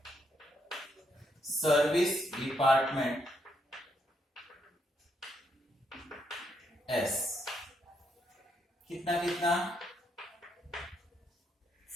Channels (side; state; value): both; normal; correlation 0.77